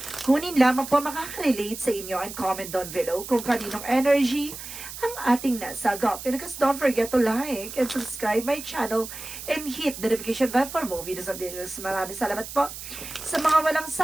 Kunin lamang po makaka-relate sa inyo and comment down below kung kaninong energy ang ating nasagap. And because don't forget to like and subscribe my channel and hit the notification bell for more videos of this. Maraming salamat po sa mga walang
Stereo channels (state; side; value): noise; right; hiss, 11 dB below the sound